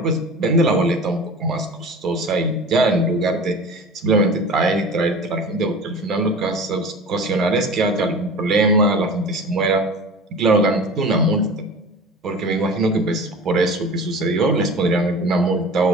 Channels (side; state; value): both; normal; correlation 0.37